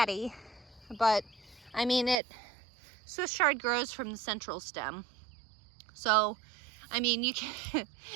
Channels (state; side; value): drops out; left; at 2.2 s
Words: but I mean, Swiss chard grows from the central stem. So, I mean,